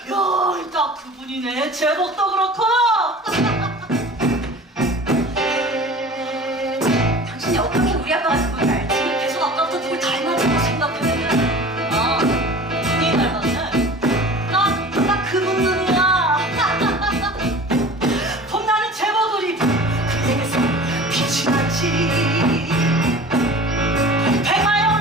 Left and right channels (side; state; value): both; normal; correlation 0.40